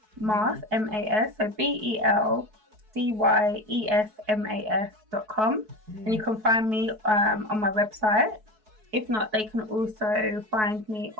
Mask, MAS. So BELDYESMAS.com, and you can find me on my website. If not, they can also find me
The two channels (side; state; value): left; late; 4.6 ms